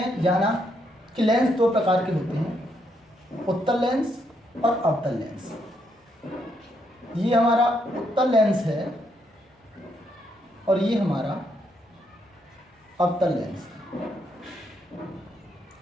जाना कि लेंस दो प्रकार के होते हैं, उत्तल लेंस और अवतल लेंस। ये हमारा उत्तल लेंस है और ये हमारा अवतल लेंस है।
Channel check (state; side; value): normal; both; correlation 0.76